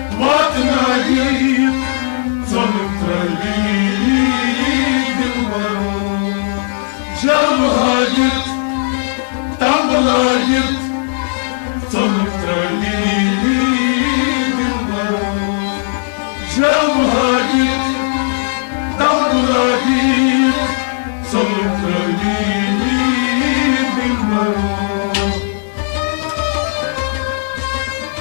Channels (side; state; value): right; silent; digital silence